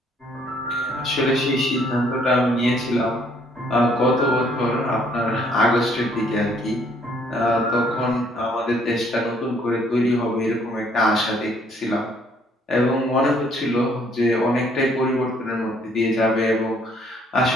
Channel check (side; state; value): both; normal; correlation 0.64